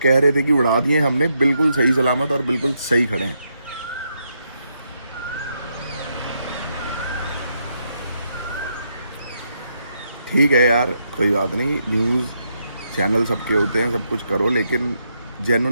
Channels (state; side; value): inverted; both; correlation -0.79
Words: कह रहे थे कि उड़ा दिए हमने, बिल्कुल सही सलामत और बिल्कुल सही खड़े हैं। ठीक है यार, कोई बात नहीं, न्यूज़ चैनल सबके होते हैं, सब कुछ करो, लेकिन